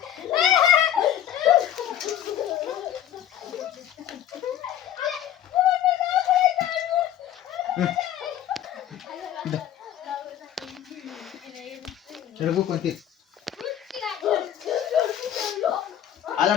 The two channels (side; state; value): right; quieter; 11.1 dB